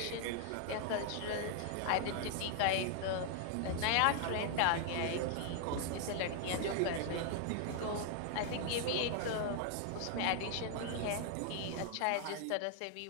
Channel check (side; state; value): both; different; correlation 0.00